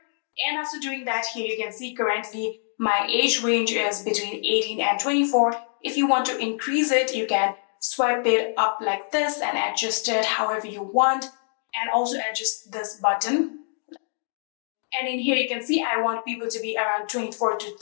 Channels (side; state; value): right; silent; 62 dB below the other